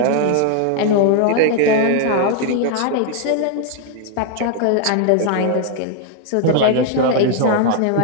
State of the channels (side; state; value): both; different; correlation 0.00